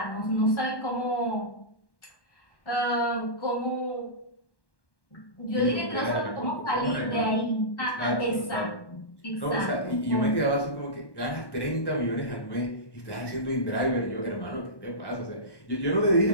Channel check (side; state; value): right; late; 1.1 ms